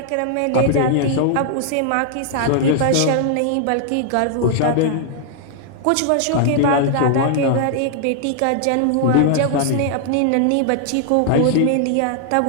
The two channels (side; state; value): both; different; correlation 0.00